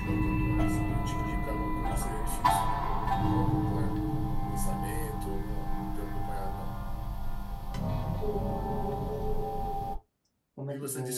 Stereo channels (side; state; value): both; identical; correlation 1.00